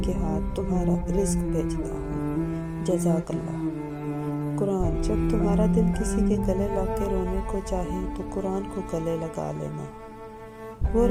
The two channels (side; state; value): both; identical; correlation 1.00